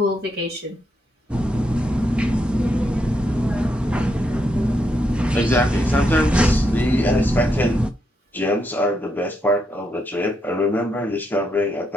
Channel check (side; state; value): both; normal; correlation 0.80